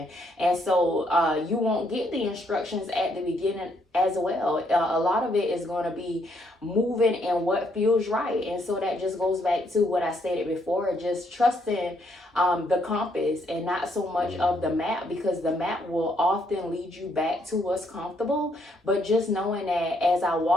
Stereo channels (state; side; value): normal; both; correlation 0.72